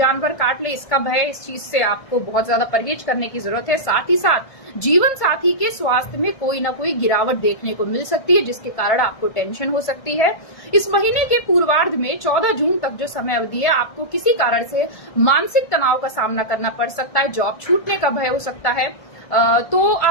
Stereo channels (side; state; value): right; late; 1.6 ms